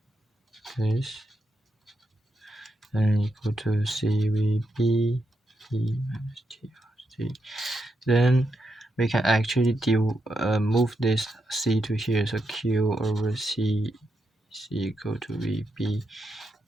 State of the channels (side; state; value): both; normal; correlation 0.83